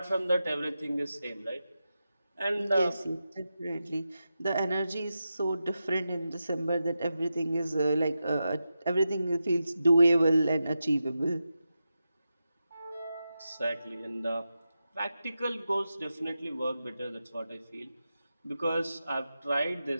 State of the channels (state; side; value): inverted; both; correlation -0.90